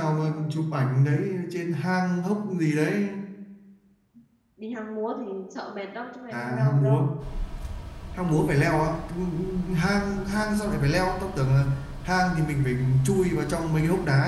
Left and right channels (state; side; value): identical; both; correlation 1.00